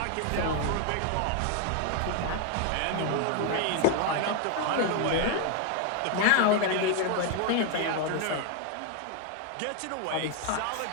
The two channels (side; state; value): both; different; correlation 0.00